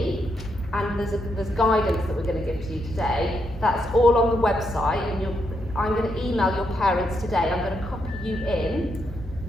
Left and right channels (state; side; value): normal; both; correlation 0.80